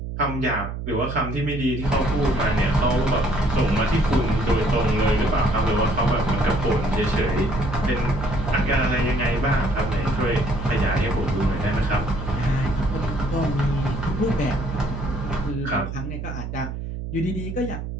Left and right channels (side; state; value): right; noise; hum, 6 dB below the sound